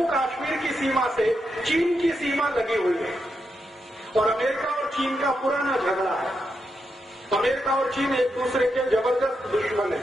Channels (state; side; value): normal; both; correlation 0.84